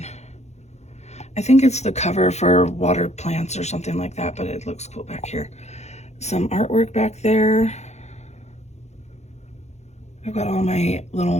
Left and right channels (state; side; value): late; right; 0.32 ms